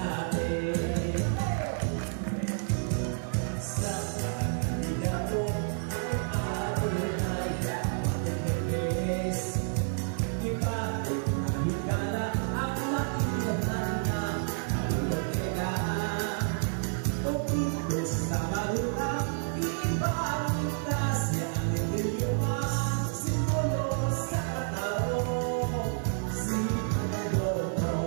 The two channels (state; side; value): silent; left; digital silence